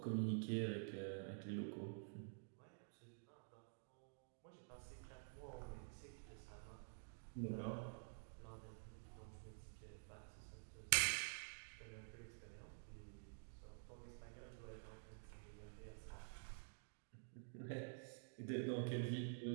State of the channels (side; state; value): left; silent; digital silence